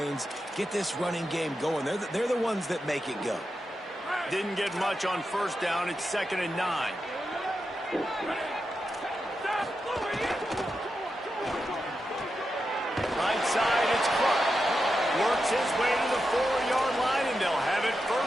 get this running game going. They're the ones that make it go. Didn't get much on 1st down. It's 2nd and 9. Right side, it's Clark. Works his way to the 4-yard line, and they'll have it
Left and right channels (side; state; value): both; normal; correlation 0.88